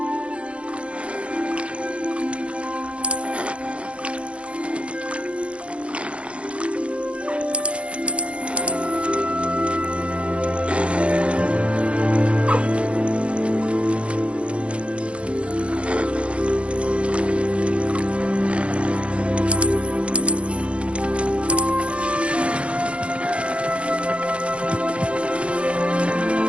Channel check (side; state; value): left; late; 0.060 ms